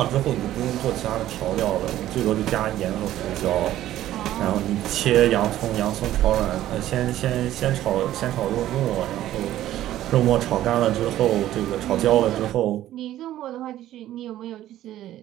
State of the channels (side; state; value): left; quieter; 13.4 dB